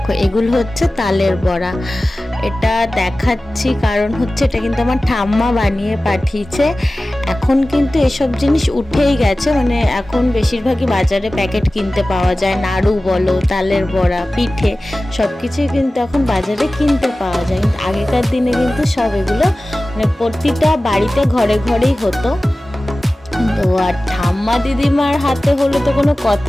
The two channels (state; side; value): normal; both; correlation 0.96